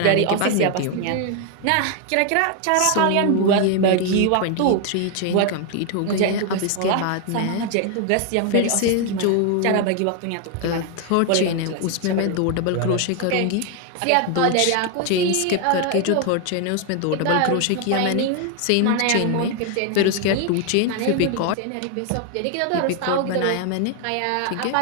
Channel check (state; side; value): different; both; correlation 0.01